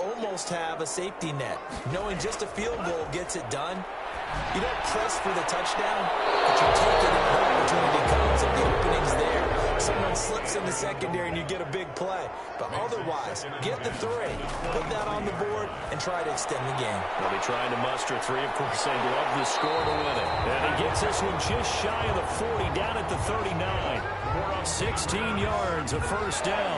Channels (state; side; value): identical; both; correlation 1.00